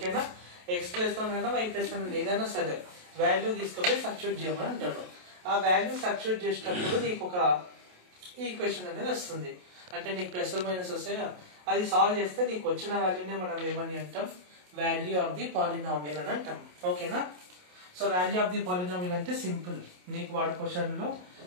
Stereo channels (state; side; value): late; left; 28 ms